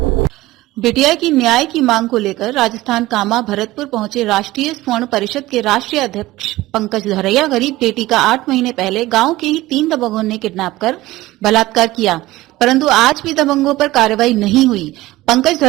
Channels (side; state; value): left; quieter; 17.7 dB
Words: बिटिया की न्याय की मांग को लेकर राजस्थान कामा भरतपुर पहुंचे राष्ट्रीय स्वर्ण परिषद के राष्ट्रीय अध्यक्ष पंकज धरैया गरीब बेटी का 8 महीने पहले गांव के ही 3 दबंगों ने किडनैप कर बलात्कार किया, परंतु आज भी दबंगों पर कार्रवाई नहीं हुई। पंकज